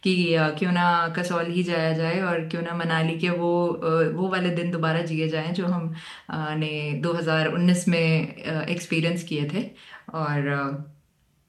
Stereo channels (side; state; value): both; identical; correlation 1.00